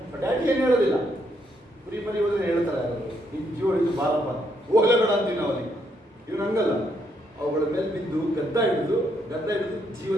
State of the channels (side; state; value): both; normal; correlation 0.75